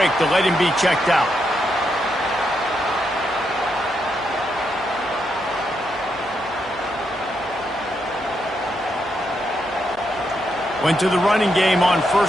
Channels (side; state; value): left; noise; hum, 26 dB below the sound